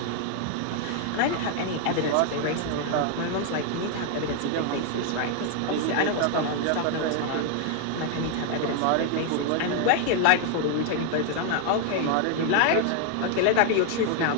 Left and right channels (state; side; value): different; both; correlation 0.00